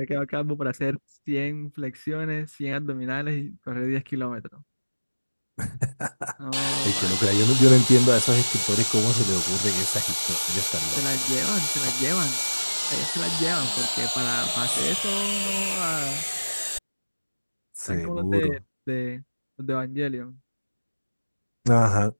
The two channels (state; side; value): inverted; both; correlation -1.00